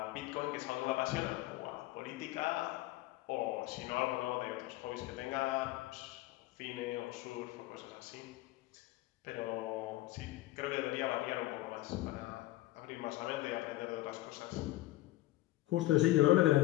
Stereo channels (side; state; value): right; quieter; 16.8 dB